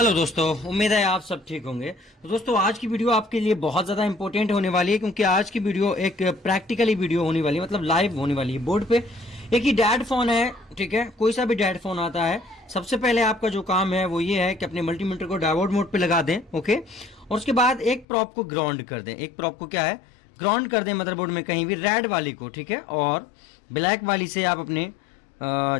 दोस्तों, उम्मीद है आप सब ठीक होंगे। तो दोस्तों आज की वीडियो आपके लिए बहुत ज़्यादा इंपॉर्टेंट होने वाली है, क्योंकि आज की वीडियो एक प्रैक्टिकली वीडियो होने वाली है, मतलब लाइव होने वाली है। बोर्ड पे एक ही डैड फोन है, ठीक है, कोई सा भी डैड फोन आता है। सबसे पहले आपका जो काम है वो ये है कि अपने मल्टीमीटर को डायोड मोड पे लगा दें, ओके। और उसके बाद एक प्रॉप को ग्राउंड कर दें। एक प्रॉप को क्या है, ग्राउंड कर दें मदरबोर्ड में कहीं भी, रेड वाली को, ठीक है। और ब्लैक वाली से आप अपने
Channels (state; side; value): drops out; right; at 18.1 s